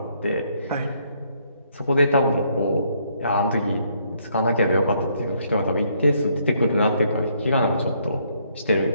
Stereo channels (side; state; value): both; inverted; correlation -0.70